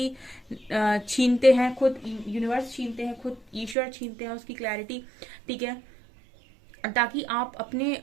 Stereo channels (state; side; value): drops out; left; at 3.8 s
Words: छीनते हैं खुद यूनिवर्स, छीनते हैं खुद ईश्वर, छीनते हैं उसकी क्लैरिटी, ठीक है, ताकि आप अपने